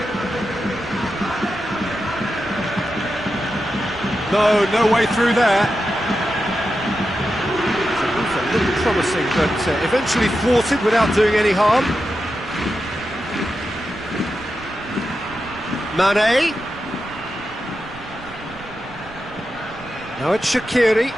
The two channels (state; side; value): noise; right; rumble, 19 dB below the sound